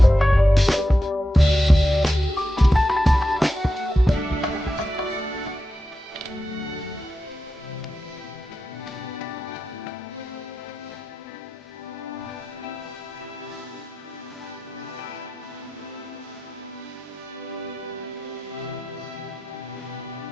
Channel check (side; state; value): both; normal; correlation 0.89